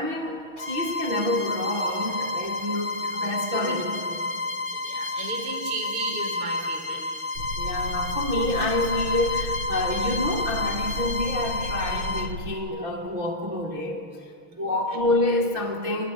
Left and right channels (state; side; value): late; left; 6.3 ms